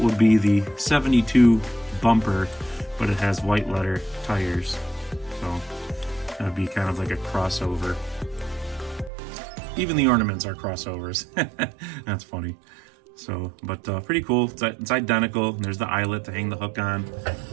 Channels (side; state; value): left; drops out; at 9.1 s